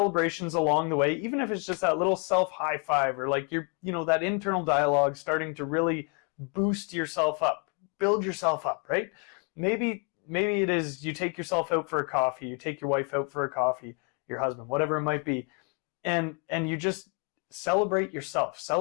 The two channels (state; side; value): quieter; right; 34.6 dB